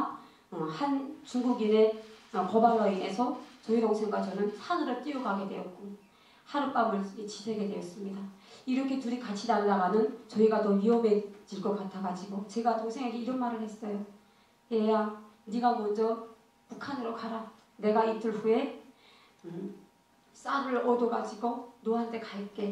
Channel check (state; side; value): identical; both; correlation 1.00